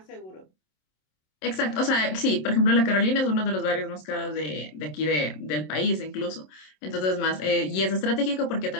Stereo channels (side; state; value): right; late; 27 ms